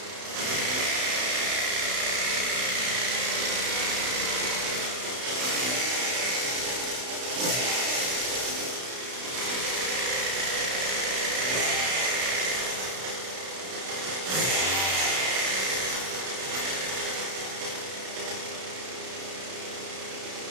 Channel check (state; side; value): late; left; 32 ms